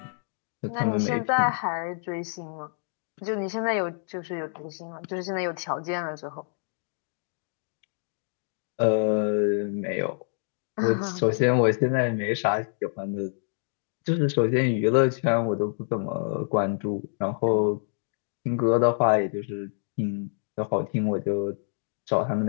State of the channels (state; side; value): silent; right; digital silence